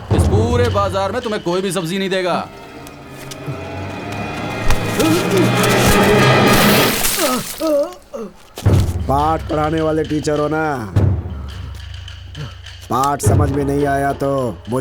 इस पूरे बाजार में तुम्हें कोई भी सब्जी नहीं देगा। पाठ पढ़ाने वाले टीचर हो ना, पाठ समझ में नहीं आया तो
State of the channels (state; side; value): identical; both; correlation 1.00